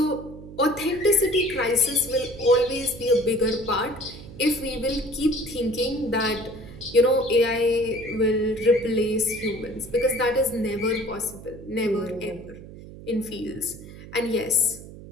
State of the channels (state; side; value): noise; right; hum, 16 dB below the sound